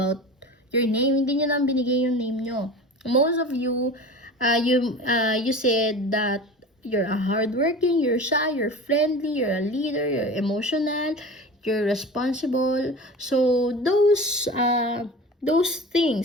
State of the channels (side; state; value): both; normal; correlation 0.34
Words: your name. Hindi nyo lang binigay yung name nyo. Most of you, you said that you're a hardworking, you're shy, you're friendly, you're a leader, you're emotional, you're responsible. So those